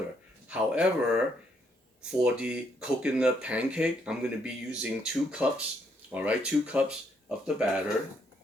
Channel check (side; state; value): both; normal; correlation 0.73